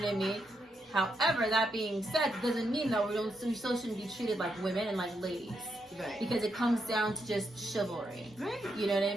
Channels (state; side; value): normal; both; correlation 0.81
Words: I mean? However, that being said, doesn't mean that we still shouldn't be treated like women and like ladies. Right. Because it comes down to just chivalry. Right. You know what I